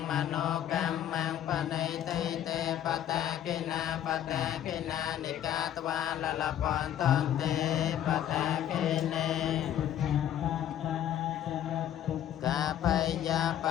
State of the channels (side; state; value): right; quieter; 10.9 dB